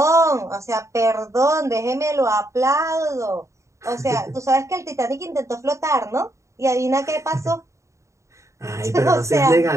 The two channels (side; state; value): left; late; 0.14 ms